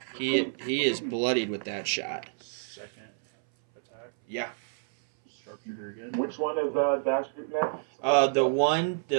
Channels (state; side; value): silent; left; 59 dB below the other